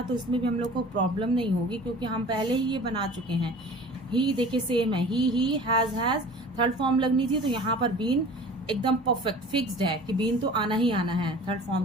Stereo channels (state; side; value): normal; both; correlation 0.43